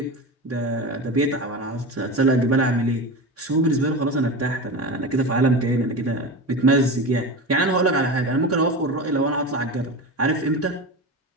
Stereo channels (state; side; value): normal; both; correlation 0.25